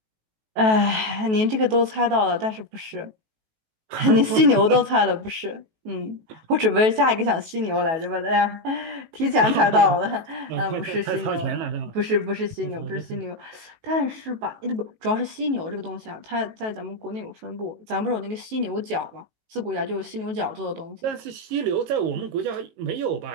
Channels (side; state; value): left; late; 18 ms